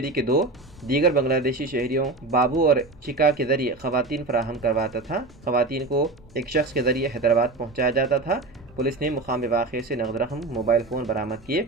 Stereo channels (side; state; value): left; quieter; 3.2 dB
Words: के 2 दीगर बांग्लादेशी शहरियों बाबू और चिका के जरिए खवातीन फराहम करवाता था। खवातीन को एक शख्स के जरिए हैदराबाद पहुँचाया जाता था। पुलिस ने मुकामी वाक़े से नगद रकम, मोबाइल फ़ोन बरामद